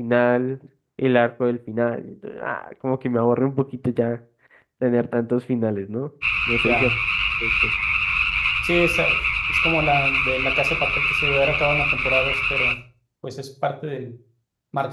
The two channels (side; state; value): both; identical; correlation 1.00